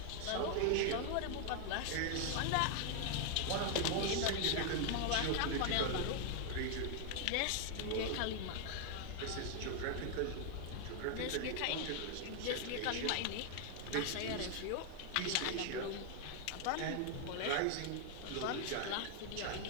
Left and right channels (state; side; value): different; both; correlation 0.00